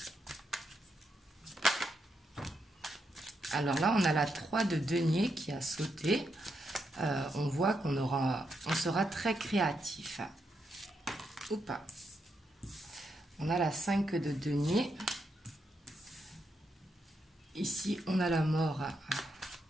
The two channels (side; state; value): both; normal; correlation 0.81